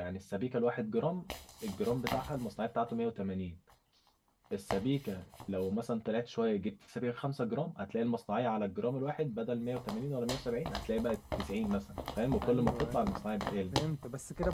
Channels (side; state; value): both; identical; correlation 1.00